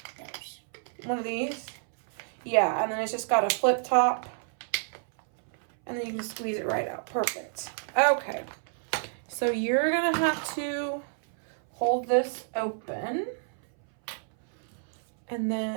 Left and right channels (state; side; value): silent; left; 58 dB below the other